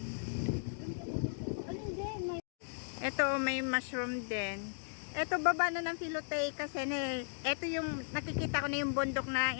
Ito, may mushroom din. Ito, baba na ng Filote kasi ito yung nakikita ko na yung bundok na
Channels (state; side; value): silent; right; digital silence